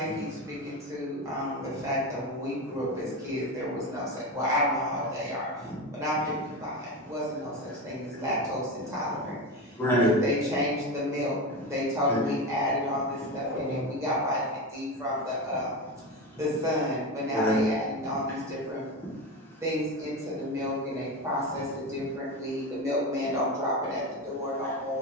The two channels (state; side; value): normal; both; correlation 0.21